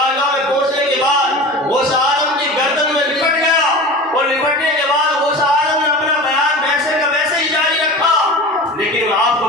میں پہنچنے کے بعد غوث اعظم کی گردن میں لپٹ گیا، اور لپٹنے کے بعد غوث اعظم نے اپنا بیان ویسے کا ویسے ہی جاری رکھا۔ لیکن میں آپ کو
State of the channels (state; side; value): normal; both; correlation 0.34